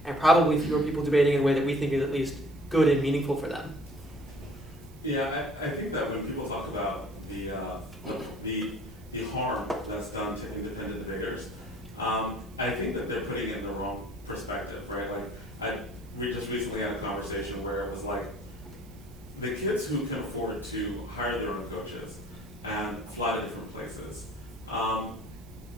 and probably fewer people debating in a way that we think is at least good and meaningful for them. Yeah, I think that when people talk about the harm that's done to independent debaters, I think that they're putting it in the wrong perspective, right? Like, we just recently had a conversation where it was like, the kids who can afford to hire their own coaches and fly to different places, all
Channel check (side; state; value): right; noise; hiss, 26 dB below the sound